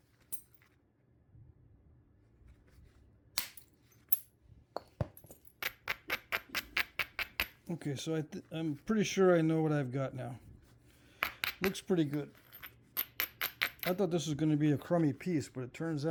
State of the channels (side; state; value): both; identical; correlation 1.00